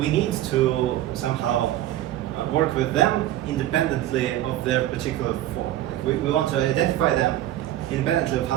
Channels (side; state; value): left; quieter; 13.6 dB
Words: need to somehow work with them independently of their particular form. Like we want to identify them independently of